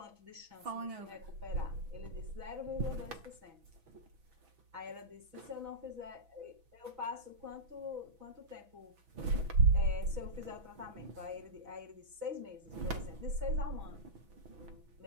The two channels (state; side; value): late; left; 6.1 ms